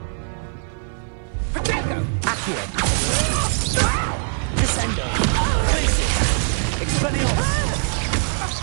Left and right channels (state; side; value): silent; left; 56 dB below the other